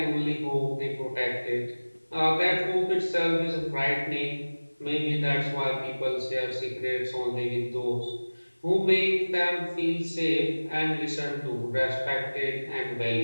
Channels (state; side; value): inverted; both; correlation -1.00